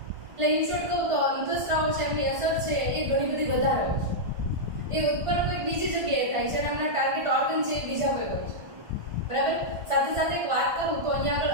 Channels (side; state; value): left; late; 1.5 ms